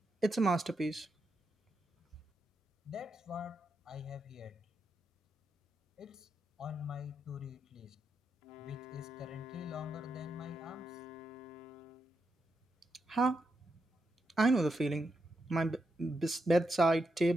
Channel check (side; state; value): both; normal; correlation 0.84